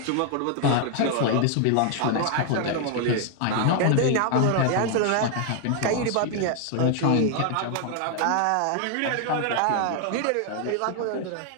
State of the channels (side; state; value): both; different; correlation 0.00